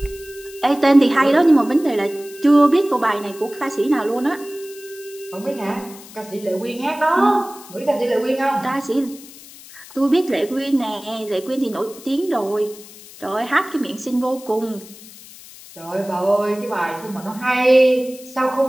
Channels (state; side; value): noise; left; hiss, 19 dB below the sound